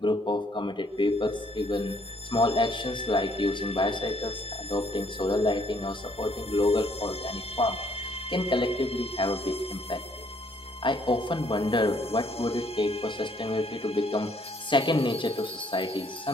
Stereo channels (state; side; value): normal; both; correlation 0.66